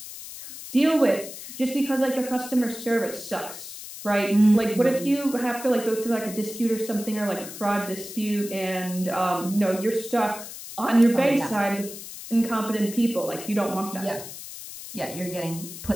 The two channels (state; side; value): noise; left; hiss, 12 dB below the sound